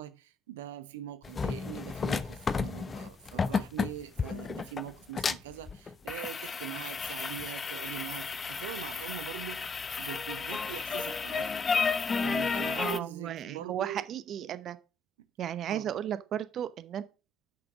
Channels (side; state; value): both; normal; correlation 0.70